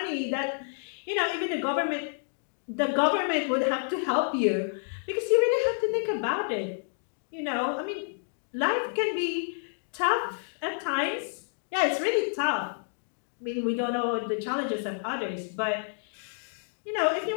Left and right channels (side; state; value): right; silent; digital silence